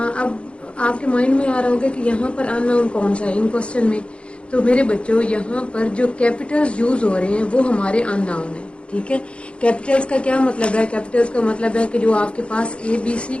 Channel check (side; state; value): right; late; 0.058 ms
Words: आपके माइंड में आ रहा होगा कि यहाँ पर अननोन कौन सा है इन क्वेश्चन में। तो मेरे बच्चों, यहाँ पर जो कैपिटल्स यूज हो रहे हैं वो हमारे अननोन है। ठीक है, कैपिटल्स का क्या मतलब है? कैपिटल्स का मतलब है कि जो आपके पास ABC